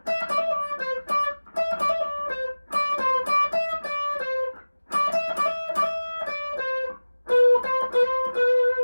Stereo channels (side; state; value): both; inverted; correlation -1.00